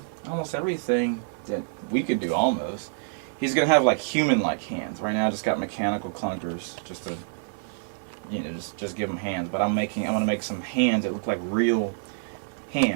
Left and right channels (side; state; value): left; silent; digital silence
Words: almost everything that we could do almost. He's going to have like human-like hands. Right now I just got mechanical clunkers just to, just give him hands. But I want to make some hands that look like real